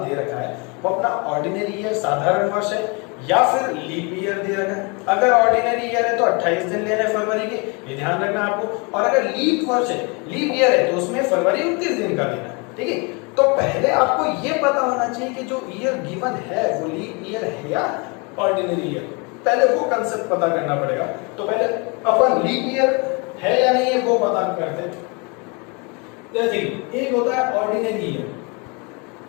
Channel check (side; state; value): right; quieter; 31.1 dB